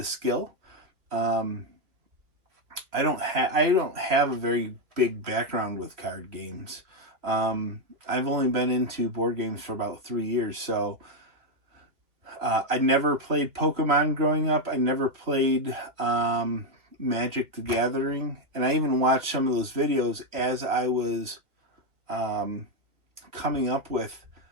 skill. I don't have a very big background with card games. I've only been into board games for about 3 years, so I never played Pokemon growing up. I never played Magic the Gathering, and I even watched some of those videos as I was coming up with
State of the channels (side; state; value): left; late; 2.6 ms